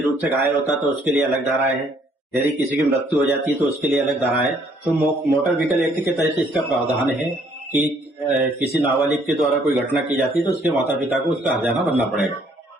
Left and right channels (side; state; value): both; normal; correlation 0.64